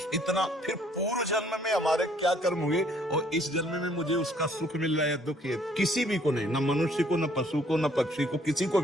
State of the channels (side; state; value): both; normal; correlation 0.62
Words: इतना फिर पूर्व जन्म में हमारे क्या कर्म हुए और इस जन्म में मुझे उसका सुख मिल रहा है, दुख है, किसी भी को नहीं, न मनुष्य को, न पशु को, न पक्षी को, किसी को